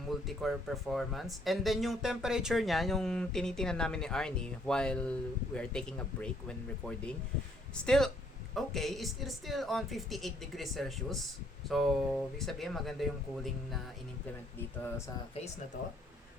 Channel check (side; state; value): both; normal; correlation 0.67